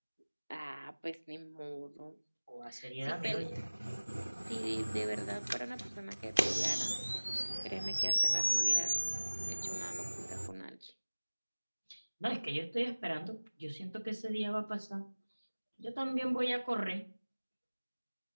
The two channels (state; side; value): inverted; both; correlation -1.00